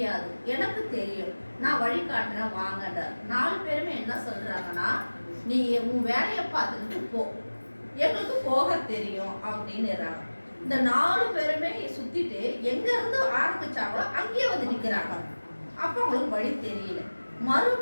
எனக்கு தெரியும், நான் வழி காட்டுறேன் வாங்கன்றார். 4 பேருமே என்ன சொல்றாங்கன்னா, நீ உன் வேலையை பார்த்துக்கிட்டு போ, எங்களுக்கு போக தெரியும் அப்படின்னு. இந்த 4 பேருமே சுத்திட்டு எங்க இருந்து ஆரம்பிச்சாங்களோ அங்கேயே வந்து நிக்கிறாங்க. அப்ப அவங்களுக்கு வழி தெரியல.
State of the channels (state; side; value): inverted; both; correlation -1.00